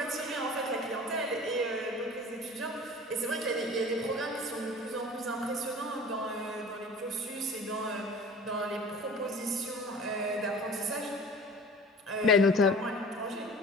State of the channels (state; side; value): normal; both; correlation 0.41